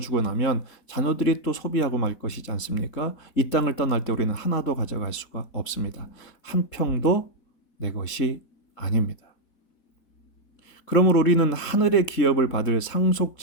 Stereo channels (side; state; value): right; late; 3.7 ms